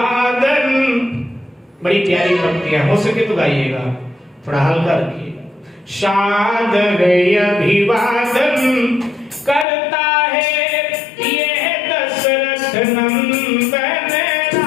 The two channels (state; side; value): drops out; right; at 9.7 s